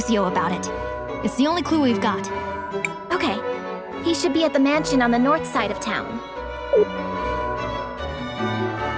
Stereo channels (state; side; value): identical; both; correlation 1.00